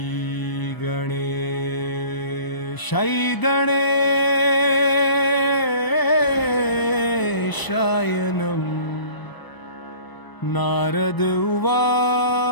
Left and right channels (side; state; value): right; late; 1.0 ms